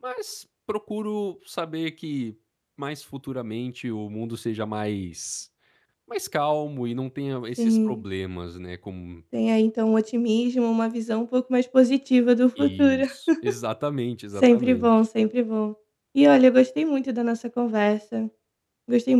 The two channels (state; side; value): identical; both; correlation 1.00